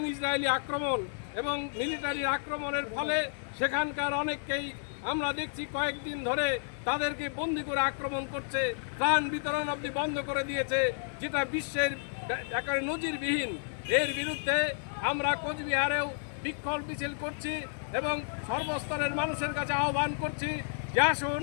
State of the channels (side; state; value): right; silent; digital silence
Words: ইসরায়েলি আক্রমণ এবং মিলিটারি আক্রমণের ফলে সেখানকার অনেককেই আমরা দেখছি কয়েকদিন ধরে তাদেরকে বন্দি করে আক্রমণ করছে, প্রাণ বিতরণ অবধি বন্ধ করে দিয়েছে, যেটা বিশ্বের একেবারে নজিরবিহীন। এর বিরুদ্ধে আমরা কোচবিহারেও বিক্ষোভ মিছিল করছি এবং সর্বস্তরের মানুষের কাছে আহ্বান করছি যে আসুন